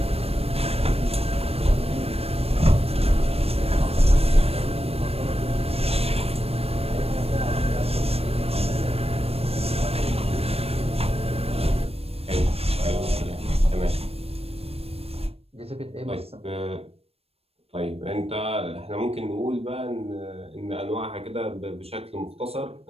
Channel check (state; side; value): late; left; 0.28 ms